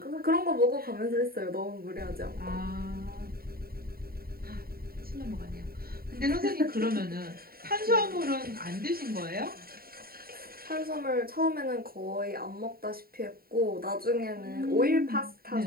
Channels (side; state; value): left; late; 0.43 ms